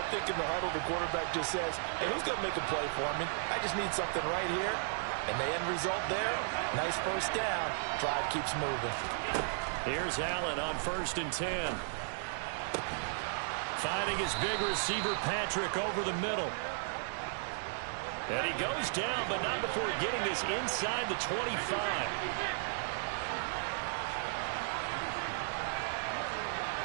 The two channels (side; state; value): left; silent; digital silence